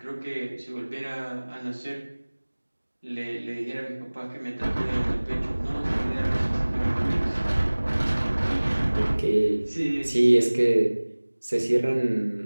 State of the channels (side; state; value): both; inverted; correlation -1.00